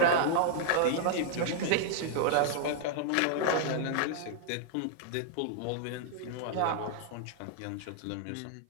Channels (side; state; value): both; different; correlation -0.01